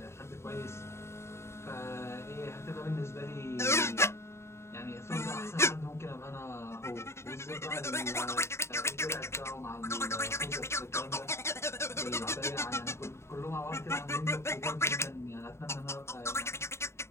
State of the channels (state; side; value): late; right; 0.13 ms